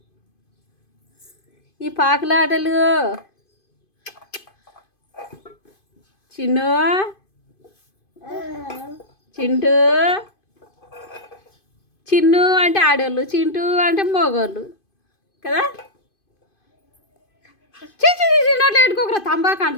ఈ పాకులాటలు చిన్ను చింటూ చిన్ను అంటే ఆడోళ్ళు చింటూ అంటే మగోళ్ళు కదా చిన్నట్లు పెట్టుకోకరా తంబాకు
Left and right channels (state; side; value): late; right; 2.5 ms